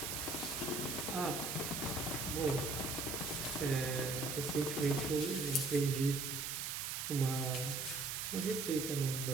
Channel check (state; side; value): noise; right; hiss, 2 dB below the sound